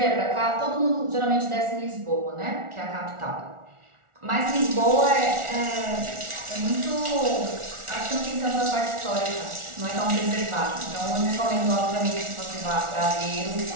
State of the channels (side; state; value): left; late; 1.4 ms